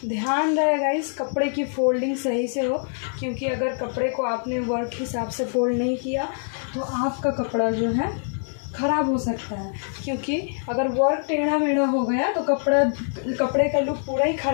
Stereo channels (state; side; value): silent; right; digital silence